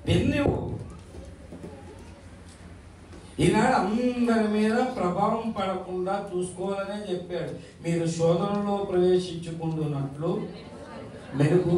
పెన్ను ఈనాడు అందరి మీద ప్రభావం పడకుండా చూసుకోవాలనే చెప్పాడు. మీరు శోధనలో ప్రవేశించుకుంటున్నట్లు మెరుగు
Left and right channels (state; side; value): identical; both; correlation 1.00